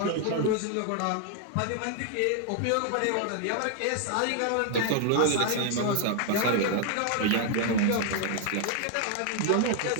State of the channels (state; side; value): different; both; correlation 0.00